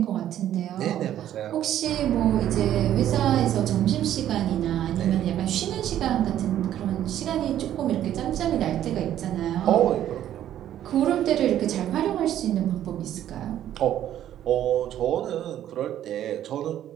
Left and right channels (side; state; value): left; quieter; 11.6 dB